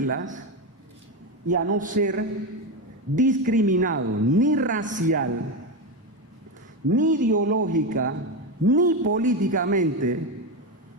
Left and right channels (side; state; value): both; normal; correlation 0.13